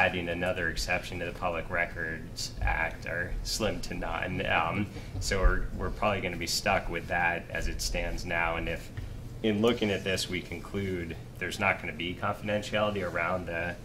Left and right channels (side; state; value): both; identical; correlation 1.00